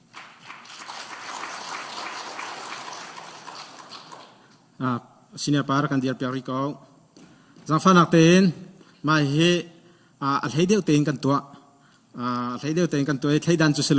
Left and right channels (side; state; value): both; identical; correlation 1.00